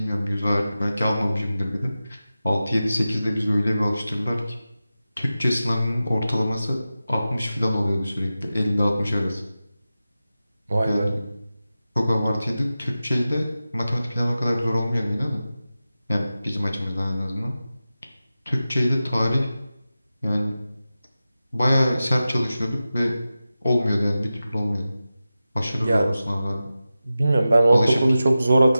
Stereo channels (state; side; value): inverted; both; correlation -0.94